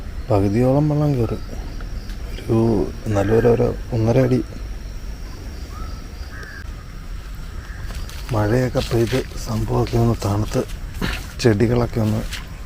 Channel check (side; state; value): both; identical; correlation 1.00